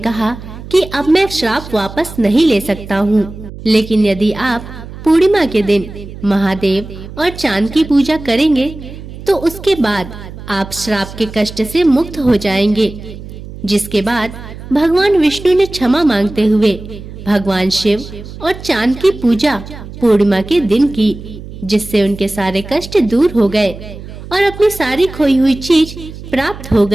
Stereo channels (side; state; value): right; noise; hum, 13 dB below the sound